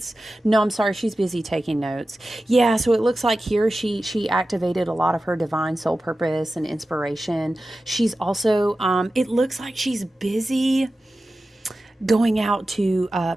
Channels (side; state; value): both; normal; correlation 0.94